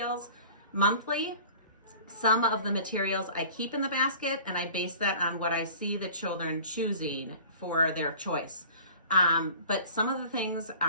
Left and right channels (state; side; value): inverted; both; correlation -0.45